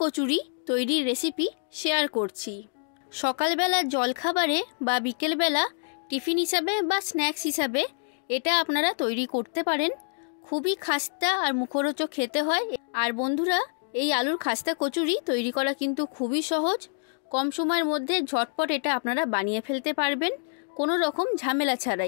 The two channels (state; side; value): silent; right; digital silence